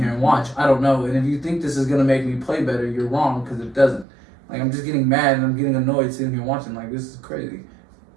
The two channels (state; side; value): drops out; left; at 4.0 s